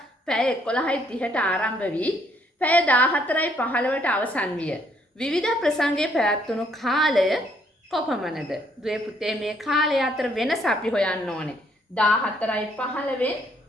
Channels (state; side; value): normal; both; correlation 0.68